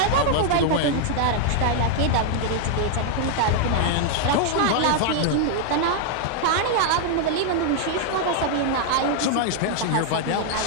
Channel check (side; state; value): both; different; correlation 0.00